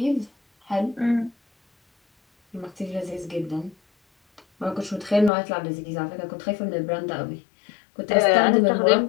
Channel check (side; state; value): right; drops out; at 5.3 s